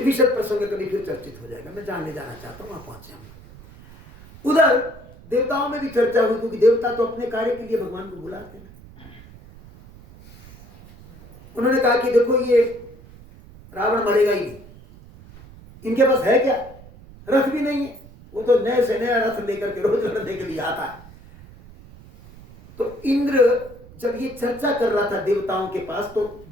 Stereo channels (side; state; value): right; noise; rumble, 20 dB below the sound